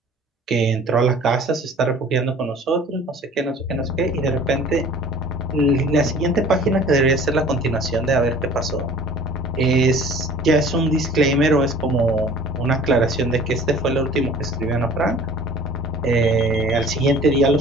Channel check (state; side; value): normal; both; correlation 0.47